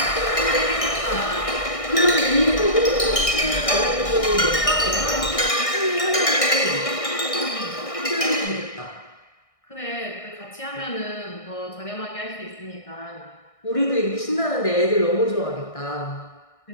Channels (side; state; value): right; late; 1.6 ms